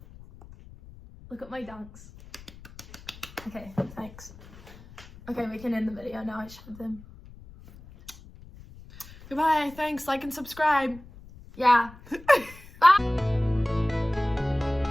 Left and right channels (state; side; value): noise; left; rumble, 20 dB below the sound